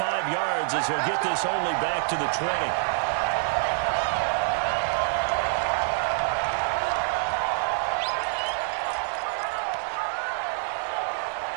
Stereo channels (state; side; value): silent; left; digital silence